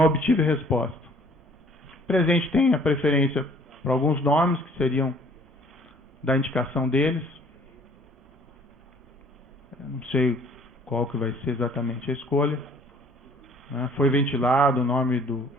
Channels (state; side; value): normal; both; correlation 0.56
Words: obtive resposta. O presidente tem a preferência para alguns nomes que seriam da indicação deles. Eu não sei qual que vai ser exatamente a escolha. Né? Foi ventilado o nome